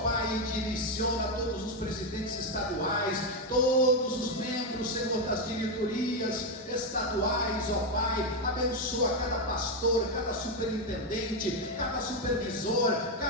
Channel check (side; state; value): both; normal; correlation 0.06